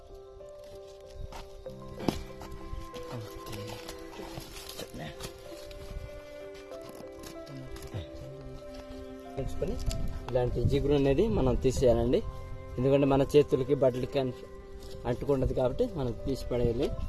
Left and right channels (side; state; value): both; identical; correlation 1.00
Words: పెంచుకొని ఇలాంటి జిగురు అనేది మనం తీసేయాలండి. ఎందుకంటే మన చేతులకి బట్టలకి అంటుకుంటుంది కాబట్టి మనం తీసి పడేయాలి.